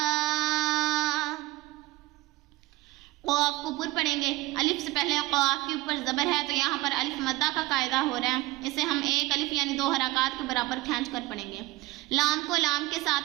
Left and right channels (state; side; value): quieter; left; 19.6 dB